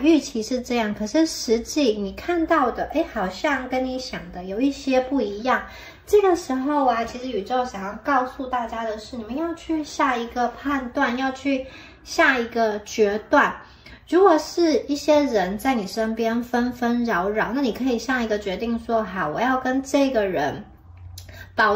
预期是这样，可是实际你看到的，好像跟你想的有一些不一样。这个时候啊，其实宇宙想要告诉大家的是，你们要去下一个判断，要去下一个决断。如果是一些人在你身边纷纷扰扰，那你可以下一个决定说，好，我要跟这个人保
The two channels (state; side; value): identical; both; correlation 1.00